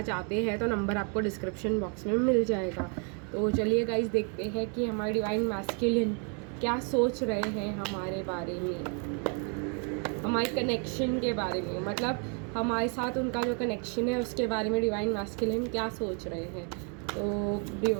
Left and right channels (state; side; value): quieter; left; 38.1 dB